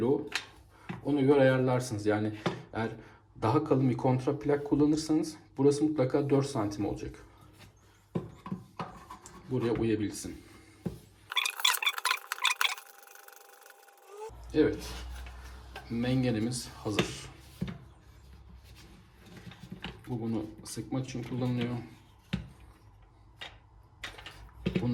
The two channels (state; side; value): identical; both; correlation 1.00